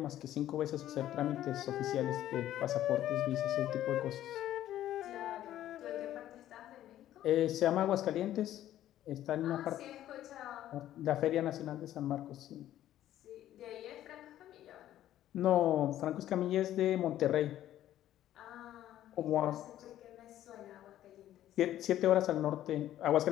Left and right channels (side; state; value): right; quieter; 12.7 dB